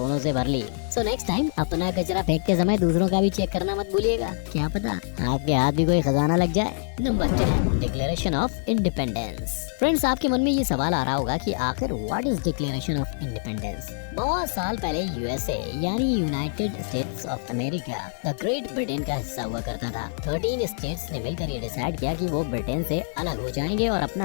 से भर ली। सो नेक्स्ट टाइम अपना कचरा फेंक के समय दूसरों का भी चेक करना मत भूलिएगा, क्या पता आपके हाथ भी कोई खजाना लग जाए। Number 10, declaration of independence. Friends, आपके मन में ये सवाल आ रहा होगा कि आखिर what is declaration of independence. बहुत साल पहले यूएसए यानी United states of America the great Britain का हिस्सा हुआ करता था। 13 स्टेट्स ने मिलकर ये डिसाइड किया कि वो ब्रिटेन से अलग हो जाएंगे और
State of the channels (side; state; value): right; silent; digital silence